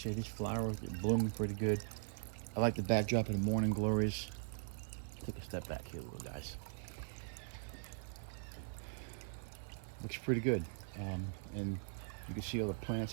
here. These flowers are blooming pretty good. I like the backdrop of the morning glories. Take a step back here, little guys. Looks pretty good. And you can see all the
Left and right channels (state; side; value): silent; left; 51 dB below the other